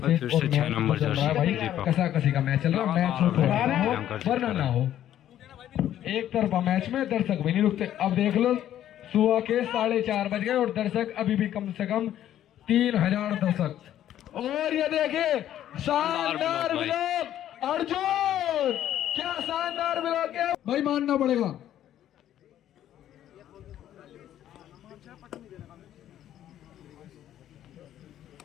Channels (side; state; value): right; quieter; 11.6 dB